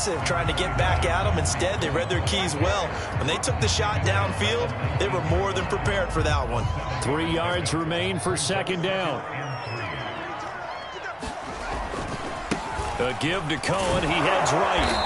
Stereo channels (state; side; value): identical; both; correlation 1.00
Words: trying to get back at them. Instead, they read their keys well. When they took the shot downfield, they were more than prepared for that one. 3 yards remain for second down. A give to Cohen. He heads